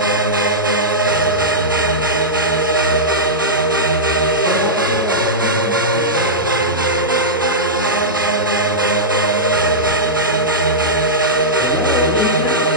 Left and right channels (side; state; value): both; normal; correlation -0.11